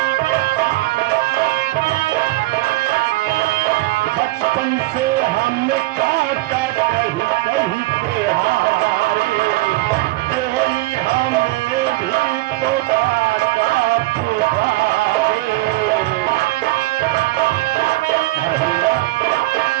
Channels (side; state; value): left; quieter; 19.7 dB